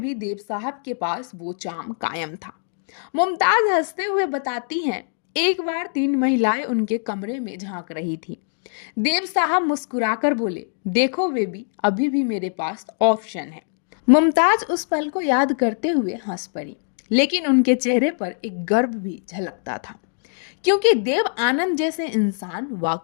भी देव साहब के पास वो चार्म कायम था। मुमताज हंसते हुए बताती हैं, एक बार 3 महिलाएं उनके कमरे में झांक रही थी। देव साहब मुस्कुराकर बोले, देखो बेबी, अभी भी मेरे पास ऑप्शन है। मुमताज उस पल को याद करते हुए हंस पड़ी, लेकिन उनके चेहरे पर एक गर्व भी झलकता था, क्योंकि देव आनंद जैसे इंसान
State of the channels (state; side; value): silent; right; digital silence